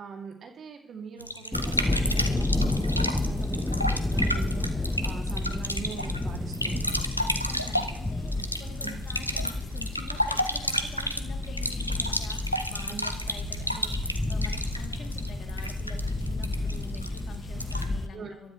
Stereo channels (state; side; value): normal; both; correlation 0.31